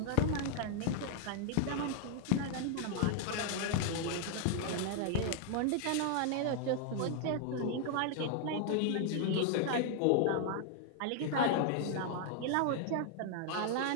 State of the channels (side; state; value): both; different; correlation 0.00